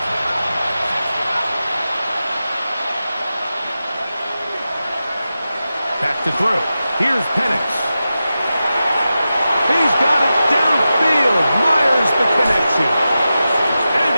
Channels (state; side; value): inverted; both; correlation -0.92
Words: Back to throw. Here's Penix. He's got it downfield. Myers the connection. And